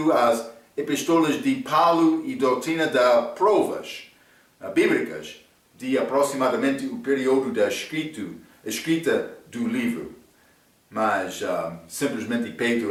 às epístolas de Paulo e doutrina das provas bíblicas de aproximadamente o período da escrita do livro. Mas simplesmente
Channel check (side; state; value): both; identical; correlation 1.00